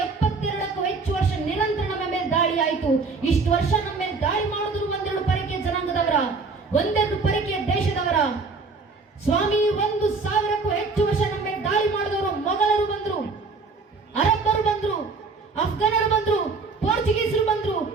ಹೆಚ್ಚು ವರ್ಷ ನಿರಂತರ ನಮ್ಮ ಮೇಲೆ ದಾಳಿ ಆಯಿತು. ಇಷ್ಟು ವರ್ಷ ನಮ್ಮ ಮೇಲೆ ದಾಳಿ ಮಾಡಿದ್ರು ಒಂದೆರಡು ಪರಕೀಯ ಜನಾಂಗದವರ, ಒಂದೆರಡು ಪರಕೀಯ ದೇಶದವರ. ಸ್ವಾಮಿ 1000ಕ್ಕೂ ಹೆಚ್ಚು ವರ್ಷ ನಮ್ಮ ಮೇಲೆ ದಾಳಿ ಮಾಡಿದವರು ಮೊಘಲರು ಬಂದ್ರು, ಅರಬ್ಬರು ಬಂದ್ರು, ಅಫ್ಘಾನರು ಬಂದ್ರು, ಪೋರ್ಚುಗೀಸರು ಬಂದ್ರು,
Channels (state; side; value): quieter; left; 4.2 dB